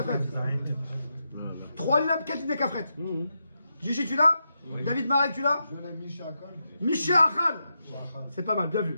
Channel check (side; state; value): both; inverted; correlation -0.86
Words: 3 lignes, 4 lignes de Kafret. Gigi, tu l'as? David Marek, tu l'as? Misha Achal. C'est pas mal, bien